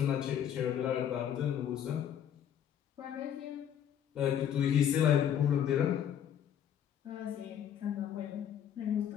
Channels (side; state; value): right; quieter; 9.5 dB